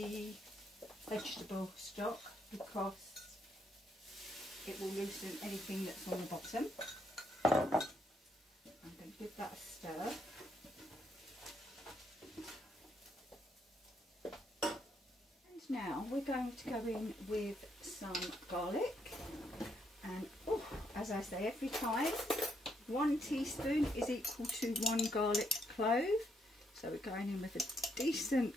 vegetable stock because it will loosen anything that's on the bottom. I'm going to give that a stir. And now we're going to go in with some garlic. And oh, as I say every time, 1 teaspoon is equal to 1 garlic clove. So we're going in with a decent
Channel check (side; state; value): both; normal; correlation 0.75